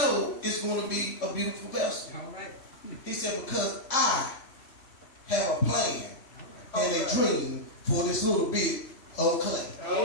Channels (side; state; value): right; late; 3.5 ms